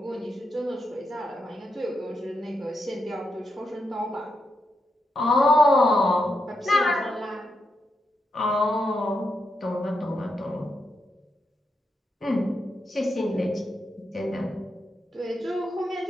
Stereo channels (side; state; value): both; normal; correlation 0.83